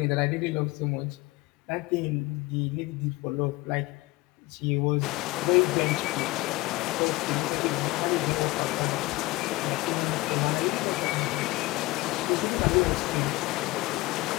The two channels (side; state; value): right; quieter; 20.9 dB